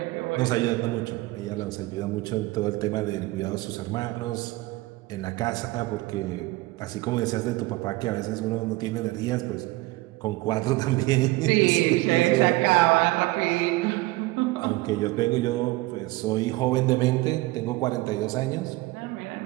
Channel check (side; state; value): left; quieter; 20.3 dB